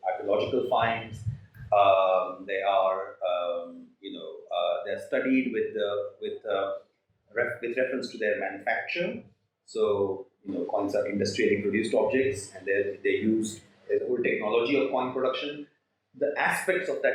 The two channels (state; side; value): identical; both; correlation 1.00